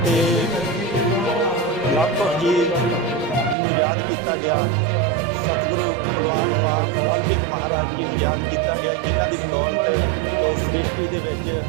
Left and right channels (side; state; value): left; drops out; at 3.6 s